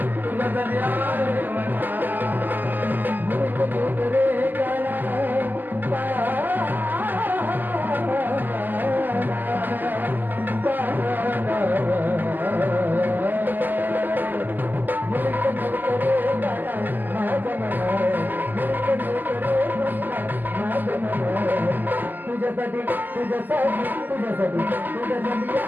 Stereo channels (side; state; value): left; late; 0.087 ms